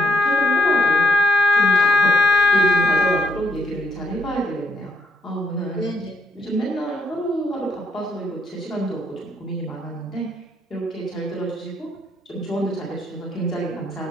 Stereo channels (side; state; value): both; normal; correlation 0.75